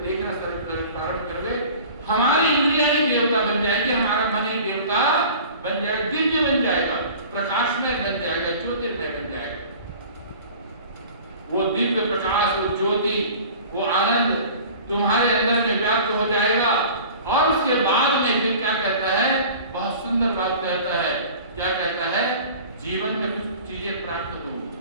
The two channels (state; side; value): inverted; both; correlation -0.43